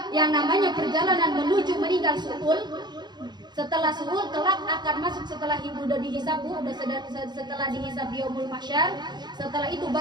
yang namanya perjalanan menuju meninggal su'ul. Setelah su'ul, kelak akan masuk setelah ibu udah dihisab, setelah dihisab di yaumul mahsyar. Setelah itu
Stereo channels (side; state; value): left; late; 0.21 ms